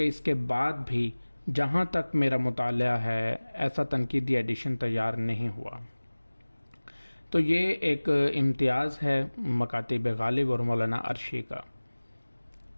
اس کے بعد بھی جہاں تک میرا مطالعہ ہے ایسا تنقیدی ایڈیشن تیار نہیں ہوا۔ تو یہ ایک امتیاز ہے مکاتیب غالب اور مولانا عرشی کا۔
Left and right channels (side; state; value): both; inverted; correlation -1.00